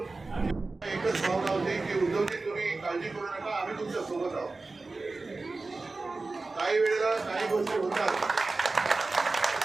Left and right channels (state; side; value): quieter; left; 3.6 dB